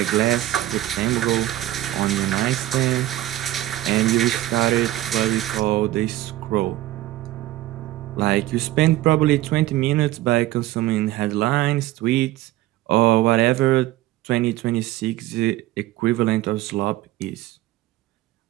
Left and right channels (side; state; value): left; quieter; 15.5 dB